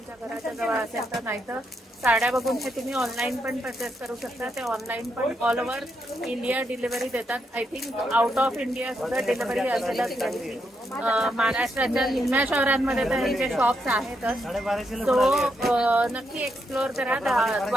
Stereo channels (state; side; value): normal; both; correlation 0.80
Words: घराच्या जवळ असेल तर, नाहीतर साड्या बघून हे तुम्ही ऑनलाईन पण परचेस करू शकता. ते ऑनलाईन पण ऑल ओव्हर इंडिया डिलिव्हरी देतात. I think out of India सुद्धा डिलिव्हरी असेलच नाही. महाराष्ट्राच्या निम्म्या शहरांमध्ये तर हे जे शॉप्स आहेतच. सो नक्की एक्सप्लोर करा